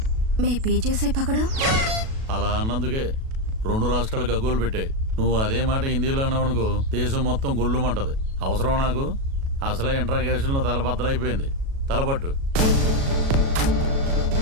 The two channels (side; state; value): left; late; 37 ms